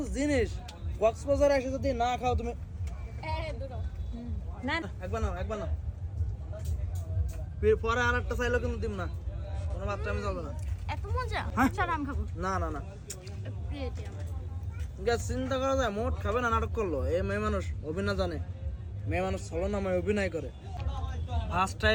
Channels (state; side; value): identical; both; correlation 1.00